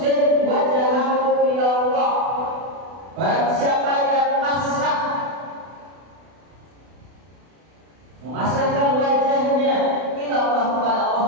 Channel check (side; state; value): left; late; 32 ms